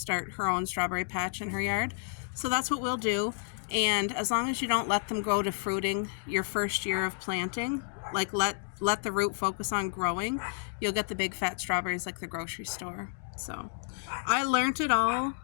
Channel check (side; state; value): right; silent; digital silence